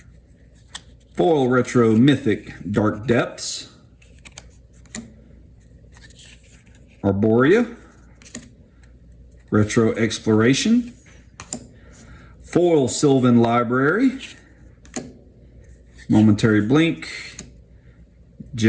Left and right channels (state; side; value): identical; both; correlation 1.00